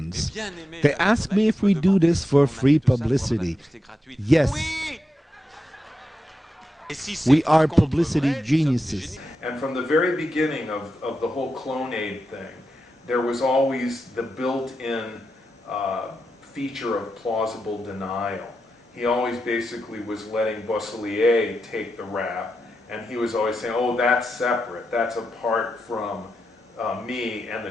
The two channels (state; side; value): normal; both; correlation 0.88